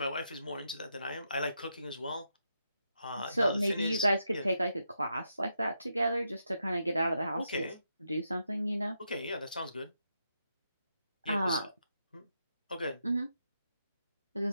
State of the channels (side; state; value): both; inverted; correlation -0.83